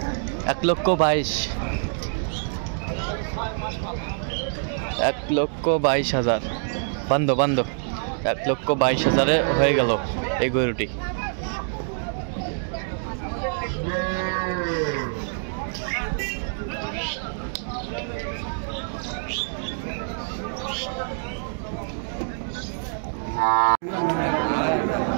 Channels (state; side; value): silent; left; digital silence